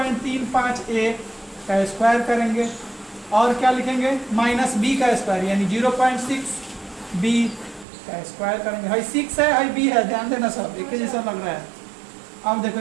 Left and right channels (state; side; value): drops out; left; at 7.9 s